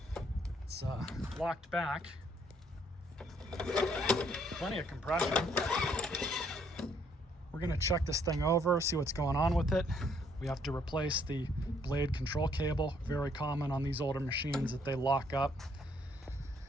It's locked back, plenty of compression. We're gonna check this thing over, see what's going on with it. We have to replace the blade control cable. Very common on these older machines that they lock up.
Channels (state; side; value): normal; both; correlation 0.67